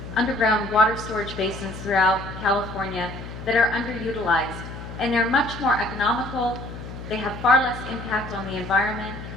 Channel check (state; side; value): noise; left; hum, 11 dB below the sound